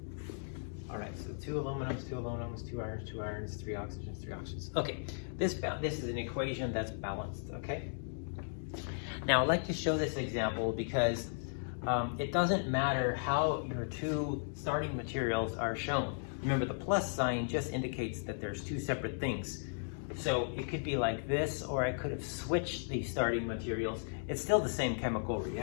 All right, so 2 aluminums, 2 irons, 3 oxygens, 3 oxygens. Okay, this is an equation that's balanced, okay? Now, I'd like to show this example because it doesn't matter how your 2 starting materials are shown. Remember, the plus sign just indicates that there's 2 separate things. So it could be like this, or I could have switched the starting materials. It's still the same chemical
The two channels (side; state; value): right; silent; digital silence